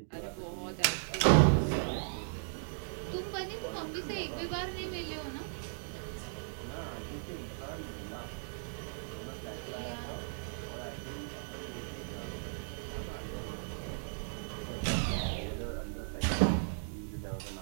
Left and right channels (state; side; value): silent; left; digital silence